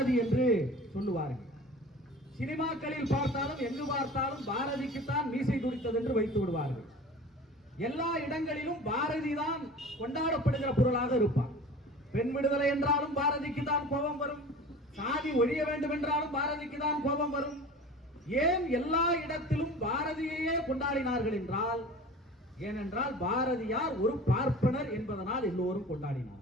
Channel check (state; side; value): normal; both; correlation 0.39